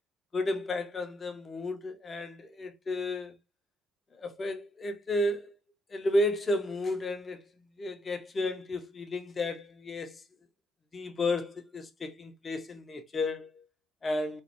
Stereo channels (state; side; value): normal; both; correlation 0.77